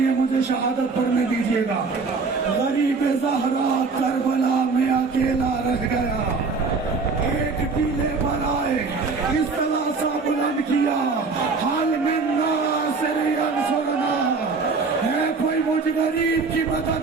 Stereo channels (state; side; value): quieter; left; 4.4 dB